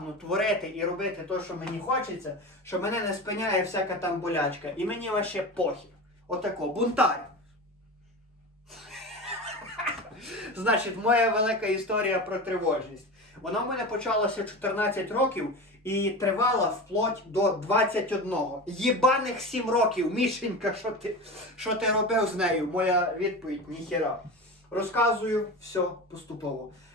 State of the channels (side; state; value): both; normal; correlation 0.27